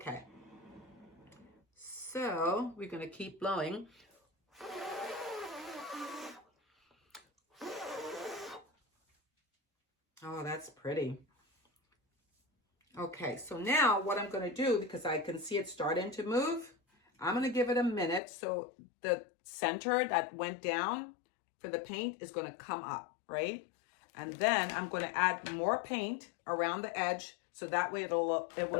So we're going to keep blowing. Oh, that's pretty. Okay, so now what I'm going to do, because I can see it starting to move, I'm going to give it a minute. So the center that went down for the paint is going to come up, right? And then I'm going to add more paint around the edge so that way it will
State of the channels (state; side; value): drops out; right; at 18.2 s